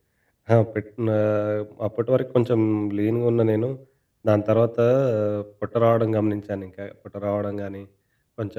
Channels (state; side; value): identical; both; correlation 1.00